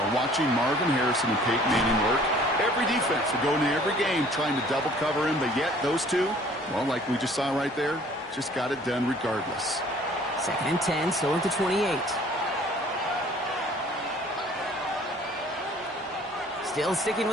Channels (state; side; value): normal; both; correlation 0.54